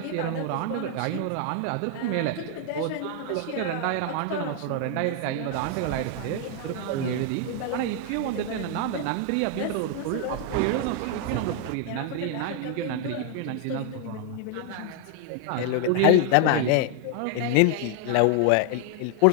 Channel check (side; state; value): both; different; correlation 0.00